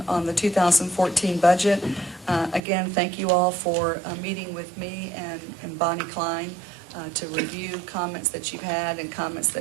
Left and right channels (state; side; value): drops out; left; at 2.6 s